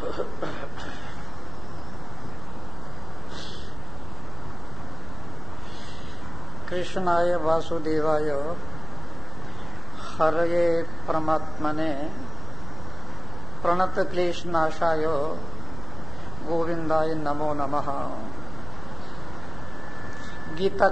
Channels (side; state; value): left; noise; rumble, 6 dB below the sound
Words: कृष्णाय वासुदेवाय हरये परमात्मने प्रणत क्लेश नाशाय गोविंदाय नमो नमः। गीता